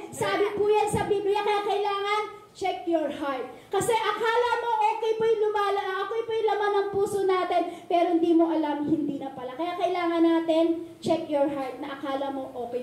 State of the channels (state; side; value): identical; both; correlation 1.00